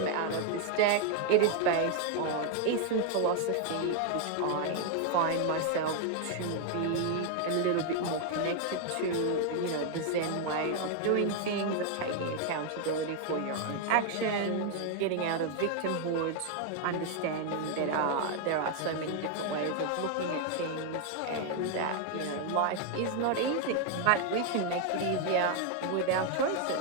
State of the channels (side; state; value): both; different; correlation 0.00